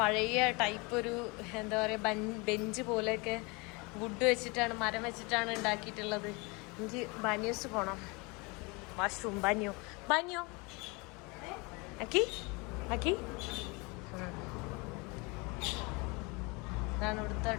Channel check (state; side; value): quieter; right; 27.9 dB